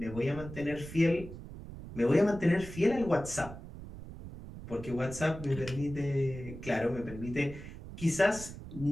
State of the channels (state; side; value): noise; right; rumble, 12 dB below the sound